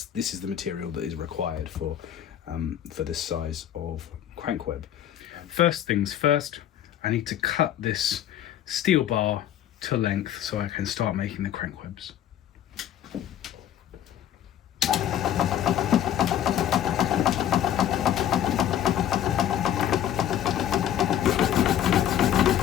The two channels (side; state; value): right; quieter; 10.8 dB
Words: is the material that is required for this size of crank web. First things first, I need to cut this steel bar to length so I can start making the crank webs.